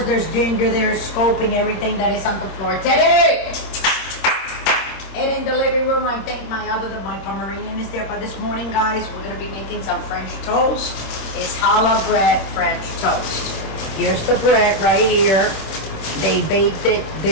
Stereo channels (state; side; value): late; right; 26 ms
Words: there's Ginger there scoping everything that is on the floor today. And in the living room, I think my Pomeranian is there. But this morning, guys, we're gonna be making some French toast. It's challah bread French toast. Here's the bread right here. They baked it